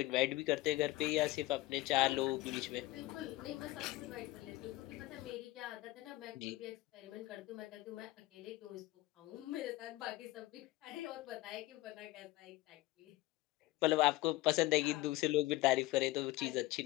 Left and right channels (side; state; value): right; quieter; 18.3 dB